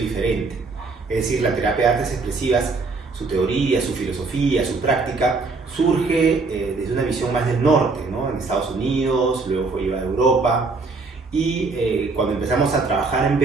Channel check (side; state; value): left; quieter; 3.9 dB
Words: Es decir, la terapia de artes expresivas, su teoría, su filosofía, su práctica, surge desde una visión más del norte, ¿no? En Estados Unidos, luego fue llevada a Europa. Y cuando empezamos a trabajar en